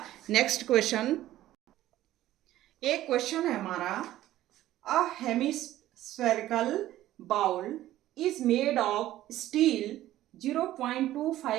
नेक्स्ट क्वेश्चन। एक क्वेश्चन है हमारा, a hemispherical bowl is made of steel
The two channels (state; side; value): quieter; left; 14.3 dB